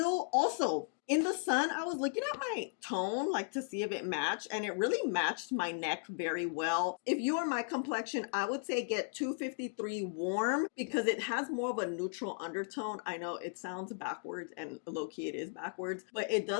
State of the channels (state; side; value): silent; right; digital silence